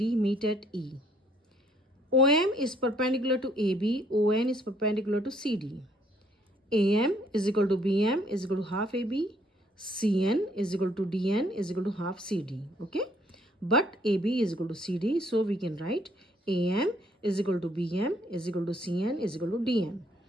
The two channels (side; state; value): both; normal; correlation 0.65